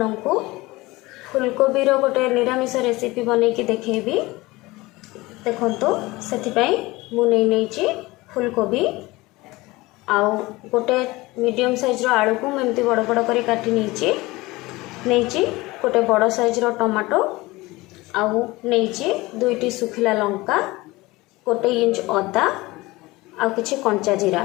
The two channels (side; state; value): right; quieter; 20.9 dB